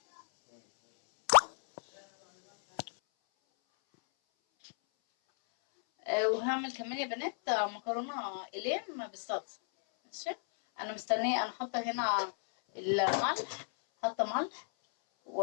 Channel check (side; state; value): right; silent; 56 dB below the other